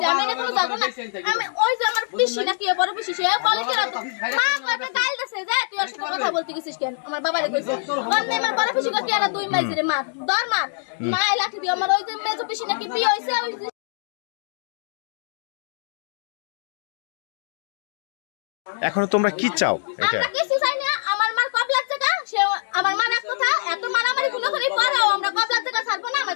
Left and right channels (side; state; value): right; silent; digital silence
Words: আমি এটা কোনো জানো না, আমি ওই যে আমার পিসি না কি বড় পিসি, সে বলে কি রাত মা কয়টা গাল দেছে যে তুই ওর সাথে কথা বলতে গেছিস কেন? আমার বাবারে কইছে অন্য আমার বড় পিসি কই আর 2 মাইছে রে মার দর মার মা লাঠি দিয়ে আমার ওই যে মেজো পিসি নাকি বিয়ে হইছে। ওই এখন তোমরা কি চাও? এটা আমরা কিছু চাই না, আমার মার কব লাগছে কা, সে আমার মার এক কথা এত মারামারি কোন